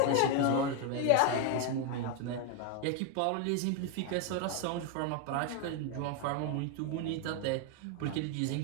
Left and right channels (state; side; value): different; both; correlation 0.01